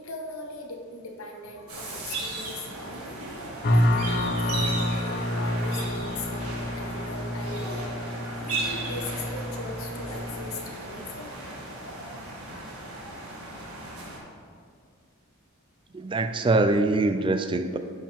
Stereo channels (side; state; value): both; normal; correlation 0.55